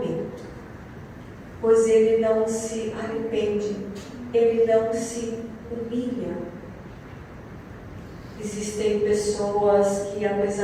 pois ele não se arrepende, ele não se humilha. Existem pessoas que,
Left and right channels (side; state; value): both; identical; correlation 1.00